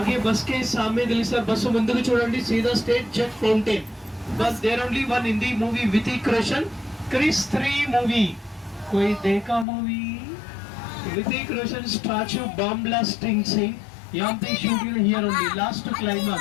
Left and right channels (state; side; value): drops out; right; at 9.7 s